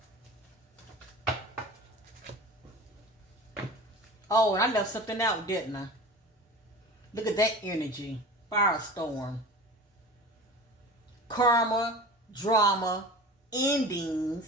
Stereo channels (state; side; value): normal; both; correlation 0.35